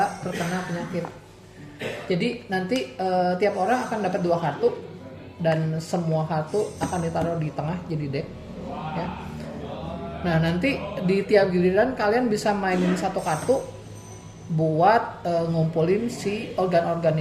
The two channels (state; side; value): identical; both; correlation 1.00